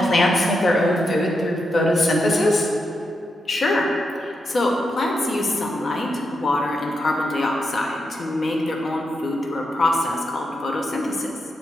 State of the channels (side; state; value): both; normal; correlation 0.85